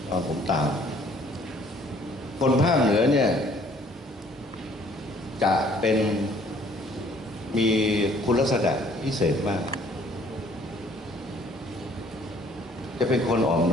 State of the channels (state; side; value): normal; both; correlation 0.59